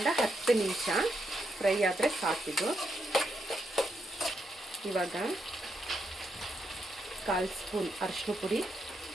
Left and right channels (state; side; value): normal; both; correlation 0.81